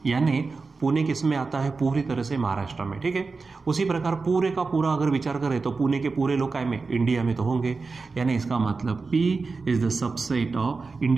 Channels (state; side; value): quieter; left; 4.2 dB